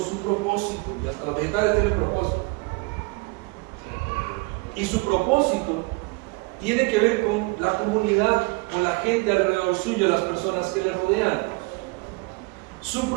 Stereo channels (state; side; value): quieter; left; 26.5 dB